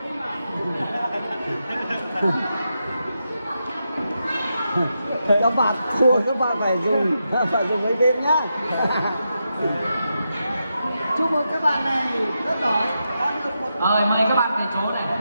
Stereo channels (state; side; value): inverted; both; correlation -0.86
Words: Các bạn thua, các bạn phải dùng cái game nhá. Chúc mừng các bạn này rất giỏi, đã được một. Mời các bạn về chỗ này.